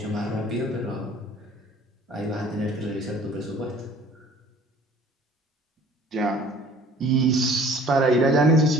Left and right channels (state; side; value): normal; both; correlation 0.51